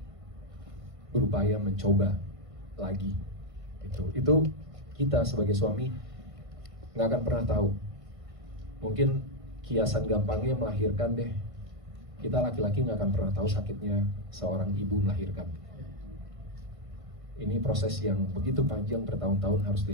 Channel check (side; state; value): left; late; 1.5 ms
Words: berupaya mencoba lagi. Itu kita sebagai suami nggak akan pernah tahu. Mungkin kiasan gampangnya melahirkan deh. Kita laki-laki nggak akan pernah tahu sakitnya seorang ibu melahirkan. Ini proses yang begitu panjang, bertahun-tahun harus